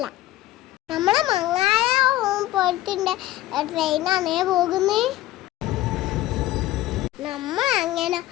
നമ്മളെ മങ്ങാല പോലത്തെ ട്രെയിനാണേ പോകുന്നേ. നമ്മൾ അങ്ങനെ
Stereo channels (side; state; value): right; quieter; 15.6 dB